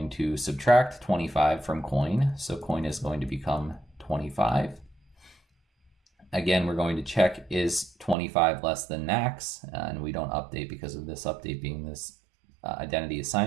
to subtract 25 from coin, so coin is going to become 25. Again, we're going to check, is 25 less than max? And we don't update because of this update being this identity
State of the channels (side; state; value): left; drops out; at 8.2 s